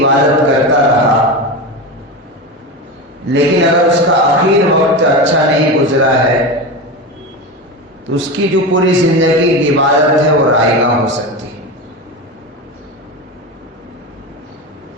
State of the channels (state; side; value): normal; both; correlation 0.22